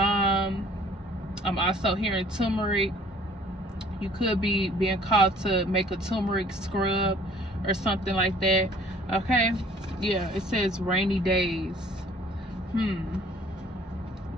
I'm also hearing turmeric. You could be being called to make a turmeric scrub or something like that. Okay, yeah, it says rainy days.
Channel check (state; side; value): normal; both; correlation 0.55